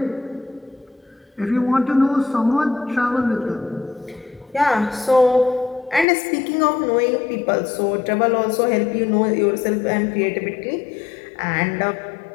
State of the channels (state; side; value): drops out; right; at 6.1 s